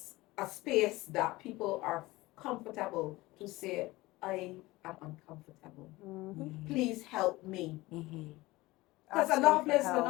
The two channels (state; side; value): quieter; right; 20.0 dB